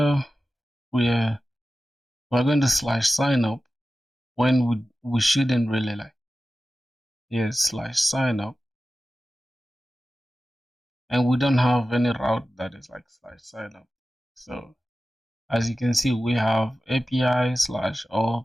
We're going to slash sign up when we shouldn't really like. Yes, slash sign up, and we don't have any route that is like slash sign up. So as you can see, we have API slash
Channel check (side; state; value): both; normal; correlation 0.94